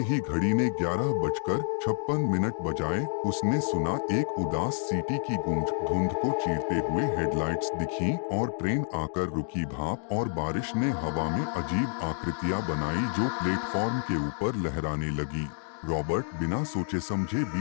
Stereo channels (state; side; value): silent; right; 59 dB below the other